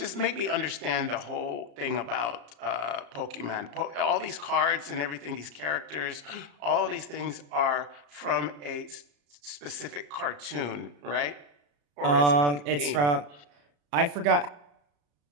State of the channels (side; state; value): left; late; 34 ms